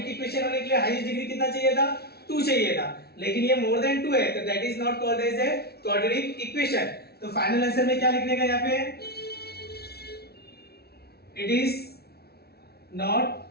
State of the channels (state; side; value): late; right; 0.46 ms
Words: इक्वेशन होने के लिए हाईएस्ट डिग्री कितना चाहिए था? 2 चाहिए था, लेकिन ये मोर देन 2 है, तो that is not called as a quadratic equation. तो फाइनल आंसर में क्या लिखने का यहाँ पे? It is